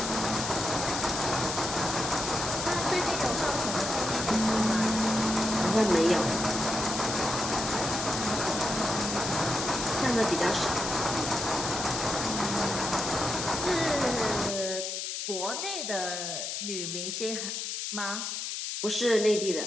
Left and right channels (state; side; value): noise; left; hiss, 4 dB below the sound